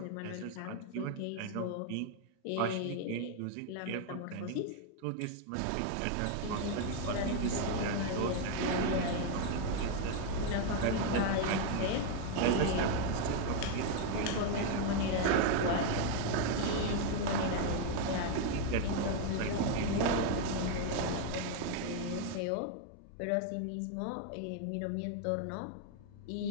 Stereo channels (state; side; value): different; both; correlation 0.01